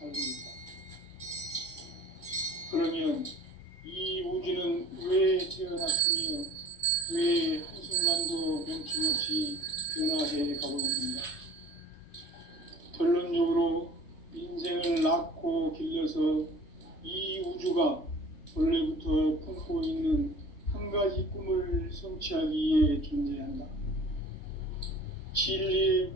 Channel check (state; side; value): late; right; 3.1 ms